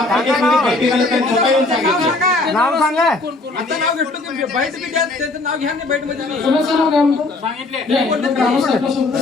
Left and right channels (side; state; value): right; quieter; 3.1 dB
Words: बैठक आले त्यांनी स्वतः येऊन सांगितलं. नाव सांगा आता नाव घेतलं की बाईट बी द्या त्याचं नाव घ्या ना बाईट मध्ये कोणाचं नाव काय म्हणतो ग्रामस्थांपासून